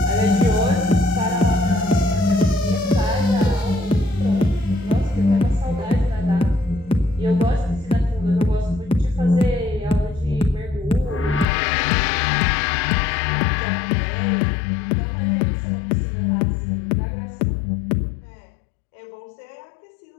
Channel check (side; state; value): right; drops out; at 11.5 s